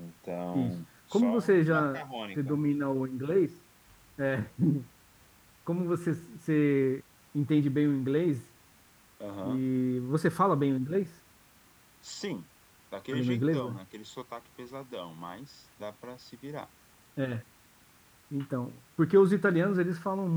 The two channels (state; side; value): identical; both; correlation 1.00